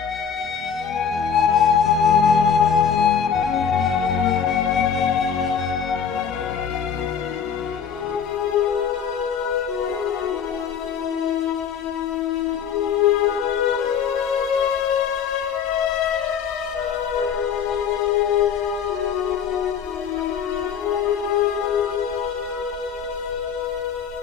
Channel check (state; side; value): quieter; right; 7.3 dB